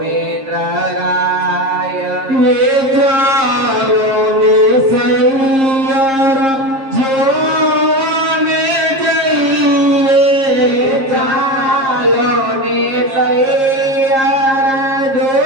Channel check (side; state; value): left; late; 7.5 ms